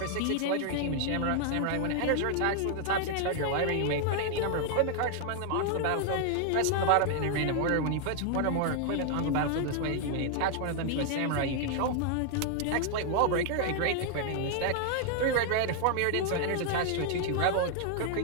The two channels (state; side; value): different; both; correlation 0.00